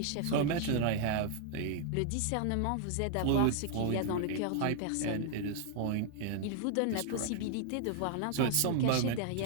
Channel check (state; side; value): different; both; correlation 0.00